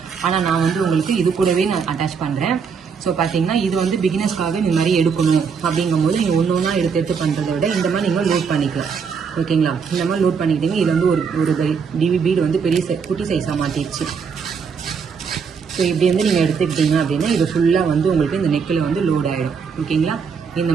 ஆனால் நான் வந்து உங்களுக்கு இது கூடவே நான் அட்டாச் பண்ணுறேன். ஸோ பார்த்தீங்கன்னா இது வந்து பிகினர்ஸ்க்காக இந்த மாதிரி எடுக்கணும் அப்படிங்கும்போது நீங்கள் ஒன்றா எடுத்து பண்ணுறதை விட இந்த மாதிரி நீங்கள் லோட் பண்ணிக்கலாம், ஓகேங்களா. இந்த மாதிரி லோட் பண்ணிக்கிட்டீங்க. இது வந்து ஒரு டிவி பீடு வந்து பெரிய குட்டி சைஸாக மாற்றிடுச்சு. ஸோ இப்படி வந்து நீங்கள் எடுத்துக்கிட்டீங்க அப்படின்னா இது ஃபுல்லாக வந்து உங்களுக்கு இந்த நெக்கில் வந்து லோட் ஆகிடும், ஓகேங்களா. இந்த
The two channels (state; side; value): quieter; left; 6.0 dB